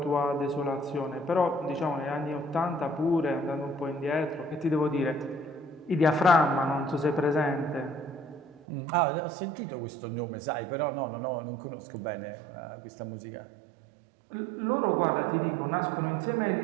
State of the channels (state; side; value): drops out; left; at 8.6 s